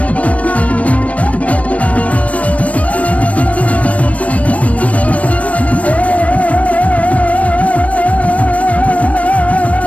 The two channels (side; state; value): right; late; 0.066 ms